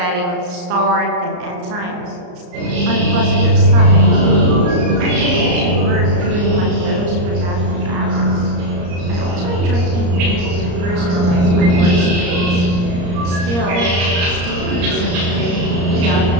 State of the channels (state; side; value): late; left; 34 ms